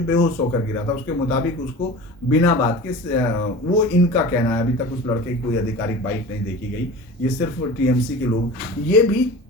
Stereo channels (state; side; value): normal; both; correlation 0.36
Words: बेहोश होकर गिरा था, उसके मुताबिक उसको बिना बात के वो इनका कहना है, अभी तक उस लड़के की कोई आधिकारिक बाइट नहीं देखी गई, ये सिर्फ टीएमसी के लोग, ये भी